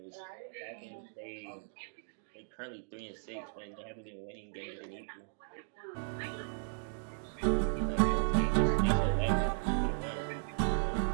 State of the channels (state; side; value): silent; left; digital silence